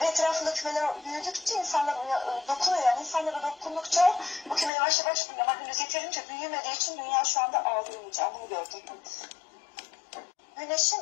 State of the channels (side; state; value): right; drops out; at 4.7 s